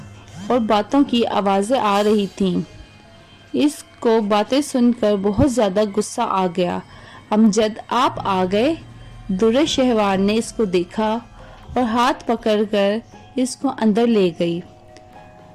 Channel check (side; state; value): both; identical; correlation 1.00